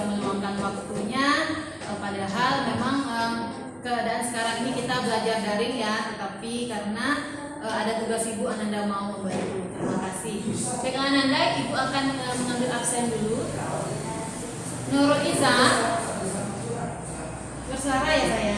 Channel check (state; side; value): identical; both; correlation 1.00